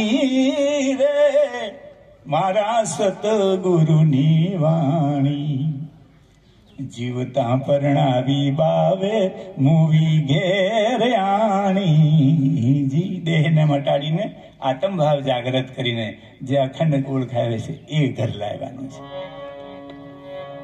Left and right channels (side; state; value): both; identical; correlation 1.00